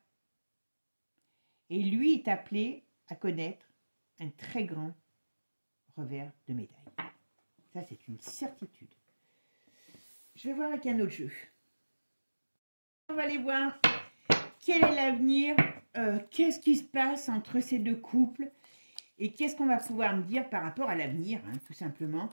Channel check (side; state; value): both; inverted; correlation -1.00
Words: Et lui est appelé à connaître un très grand revers de médaille. Ça, c'est une certitude. Je vais voir avec un autre jeu. On va aller voir quel est l'avenir, qu'est-ce qui se passe entre ces deux couples et qu'est-ce qu'on va pouvoir me dire par rapport à l'avenir, hein, tout simplement.